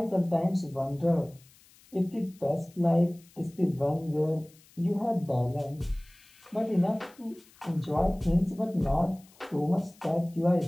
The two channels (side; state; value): left; noise; hiss, 27 dB below the sound